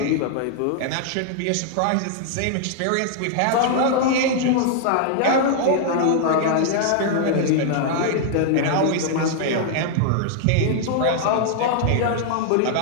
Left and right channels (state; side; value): different; both; correlation -0.01